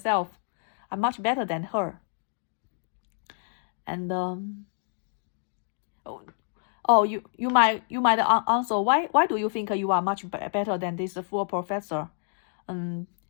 I'm much better than her. And you might answer, why do you think you are much better than this full professor?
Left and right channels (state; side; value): silent; right; digital silence